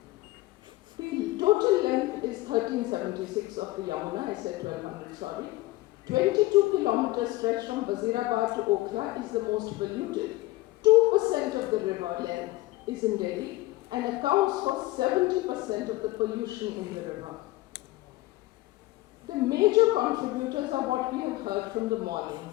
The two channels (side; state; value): right; quieter; 18.7 dB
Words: The total length is 1376 of the Yamuna, I said 1200, sorry. 22 kilometer stretch from Wazirabad to Okhla is the most polluted. 2% of the river length is in Delhi and accounts for 70% of the pollution in the river. The major contributors are what we have heard from the morning: